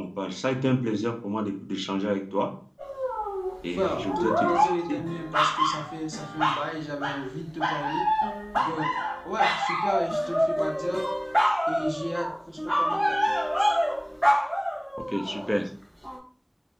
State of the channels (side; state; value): both; identical; correlation 1.00